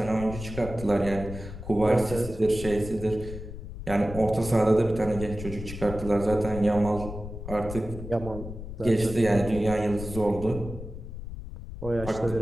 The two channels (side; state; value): left; noise; rumble, 10 dB below the sound